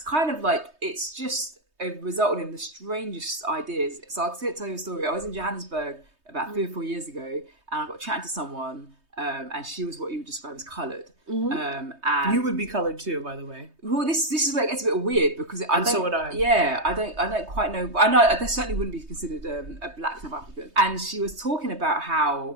of like, it's just... It resulted in the strangest ideas. So I'll tell you a story. I was in Johannesburg about 3 or 4 years ago, and I got chatting to someone, and she was what you would describe as coloured. And you would be coloured too, by the way. Well, this is where it gets a bit weird, because so would I. Yeah, I don't quite know. I know I certainly wouldn't be considered a black South African. And she was talking about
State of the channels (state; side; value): late; left; 3.2 ms